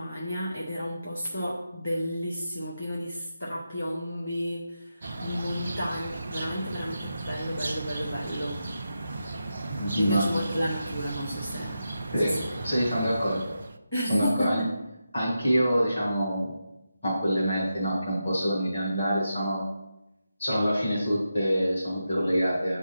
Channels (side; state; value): both; inverted; correlation -0.88